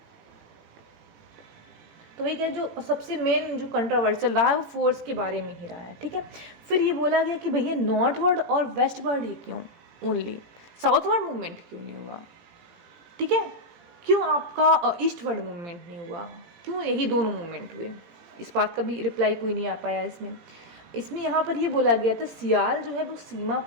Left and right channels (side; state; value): left; late; 17 ms